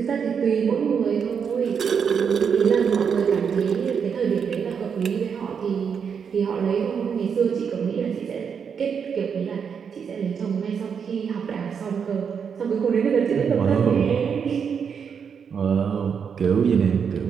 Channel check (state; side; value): quieter; left; 6.8 dB